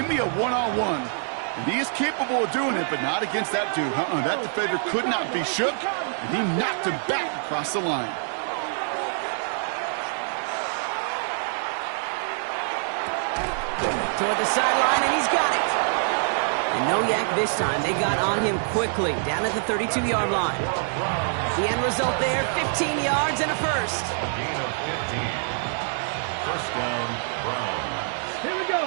me a one-on-one. And he is capable of doing it, but not against that dude. That defender could not be shook, and he knocked him back across the line. Toward the sideline, and he's got it. And no yak this time. They got on him quickly, down at the 32-yard line. The end result there, 15 yards and a first. Gain of 15. First down, Brown. Here we go,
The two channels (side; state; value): left; silent; digital silence